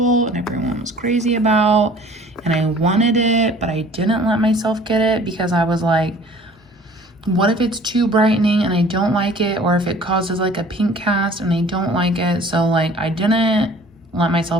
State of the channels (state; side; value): normal; both; correlation 0.50